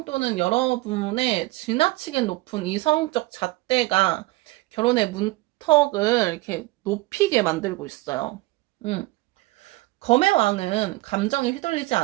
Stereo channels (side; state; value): left; quieter; 20.7 dB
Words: 또는 여러분의 지나치게 높은 이성적 잣대가 결혼의 문턱을 이렇게 높이게 만들고 있어요. 음. 검의 왕은 감정에 휘둘리지